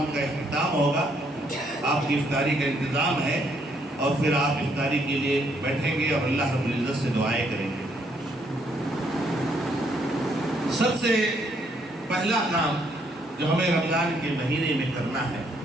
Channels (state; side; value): normal; both; correlation 0.71